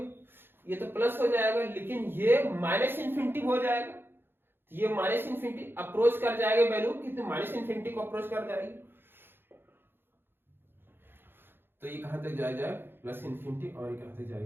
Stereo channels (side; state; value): left; late; 0.10 ms